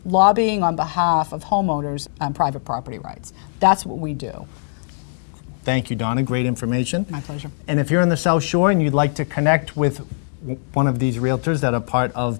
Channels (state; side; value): silent; right; digital silence